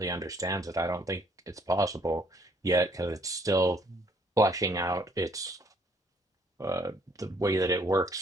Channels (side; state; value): both; normal; correlation 0.65